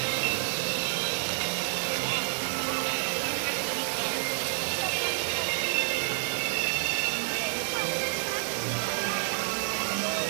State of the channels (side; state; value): left; silent; digital silence